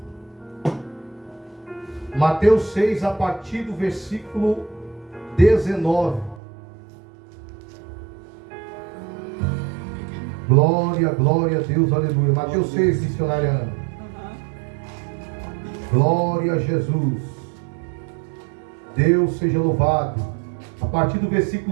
Mateus 6, a partir do versículo 19. Glória, glória a Deus, aleluia. Mateus 6, missionária Ana. Glória a Jesus. Deus seja louvado. A partir do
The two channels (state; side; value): drops out; left; at 6.4 s